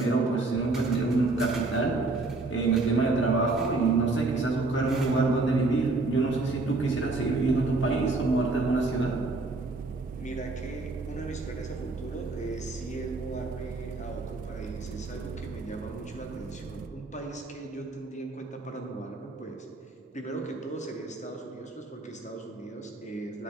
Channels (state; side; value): quieter; left; 3.3 dB